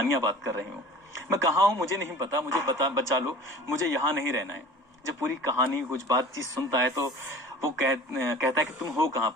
बात कर रही हूँ, मैं कहाँ हूँ मुझे नहीं पता, मुझे बचा लो, मुझे यहाँ नहीं रहना है। जब पूरी कहानी कुछ बातचीत सुनता है तो वो कहता है कि तुम हो कहाँ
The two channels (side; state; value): both; normal; correlation 0.43